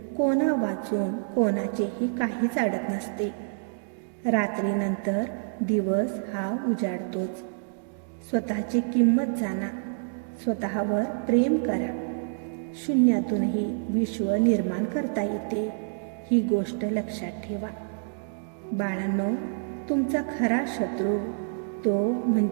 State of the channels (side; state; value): left; silent; digital silence